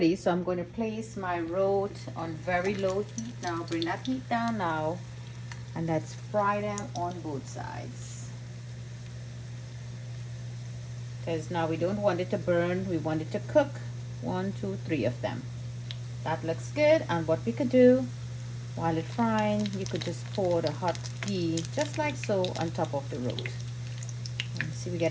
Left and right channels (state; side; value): identical; both; correlation 1.00